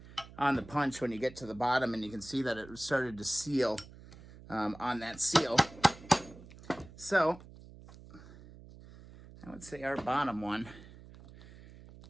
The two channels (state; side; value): noise; right; hum, 19 dB below the sound